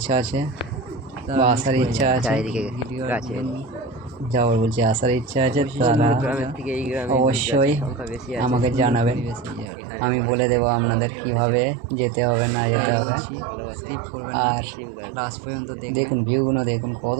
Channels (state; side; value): drops out; left; at 9.7 s